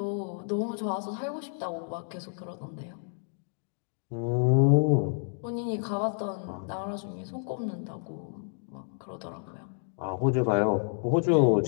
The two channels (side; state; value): right; silent; digital silence